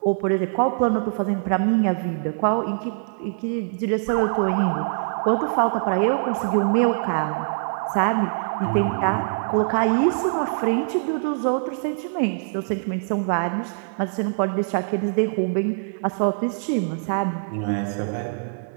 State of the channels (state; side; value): silent; left; 63 dB below the other